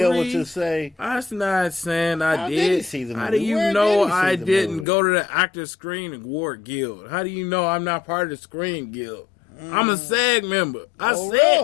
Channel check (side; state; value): right; drops out; at 4.9 s